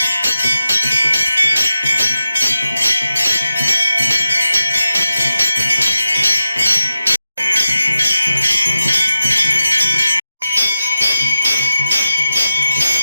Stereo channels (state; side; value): inverted; both; correlation -0.92